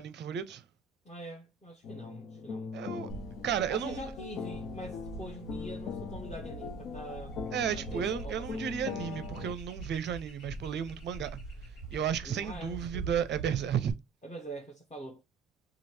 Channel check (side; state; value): left; quieter; 4.9 dB